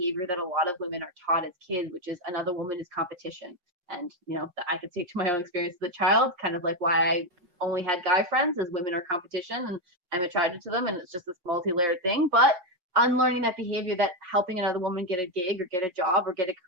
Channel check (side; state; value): left; late; 5.6 ms